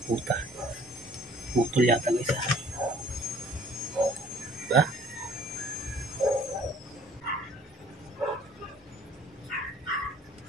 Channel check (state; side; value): normal; both; correlation 0.56